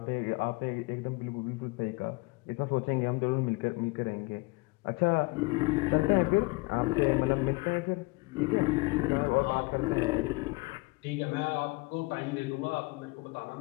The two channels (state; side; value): quieter; right; 25.7 dB